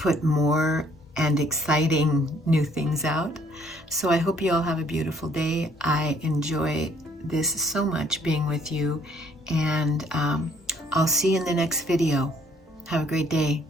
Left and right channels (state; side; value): normal; both; correlation 0.63